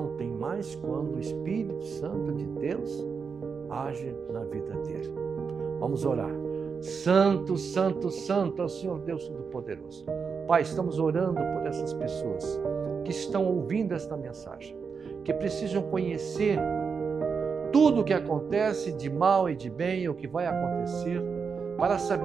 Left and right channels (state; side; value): quieter; left; 5.7 dB